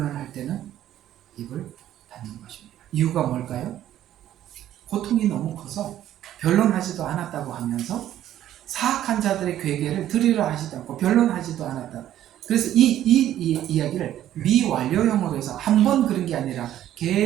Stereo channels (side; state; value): left; quieter; 12.1 dB